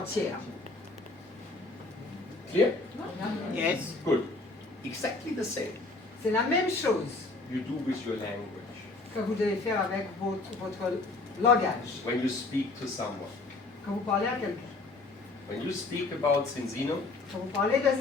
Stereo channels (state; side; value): quieter; right; 3.4 dB